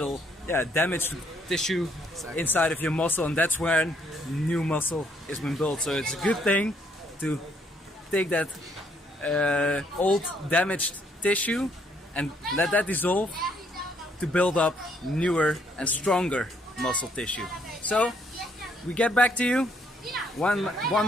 damaged tissue inside of your muscle, and that's when new muscle is being built. So it's a good thing to take that old damaged tissue and let that dissolve to build up newer and stronger muscle tissue. So we get back to you. One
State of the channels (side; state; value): both; normal; correlation 0.69